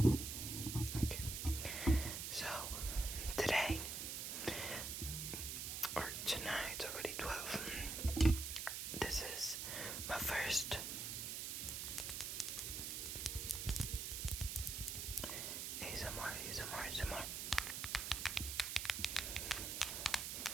Okay. So, today, or tonight, it's already 12. This is my first ASMR.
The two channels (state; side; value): noise; right; hiss, 3 dB below the sound